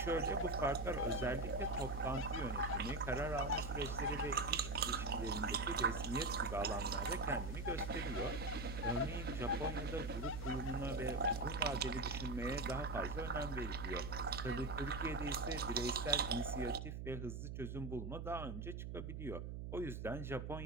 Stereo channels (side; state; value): right; noise; hum, 6 dB below the sound